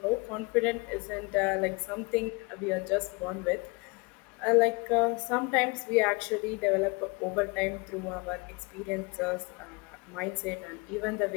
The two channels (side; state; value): right; quieter; 28.2 dB